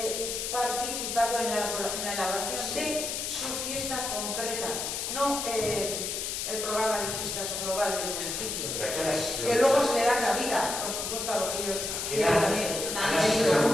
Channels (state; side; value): noise; left; hiss, 3 dB below the sound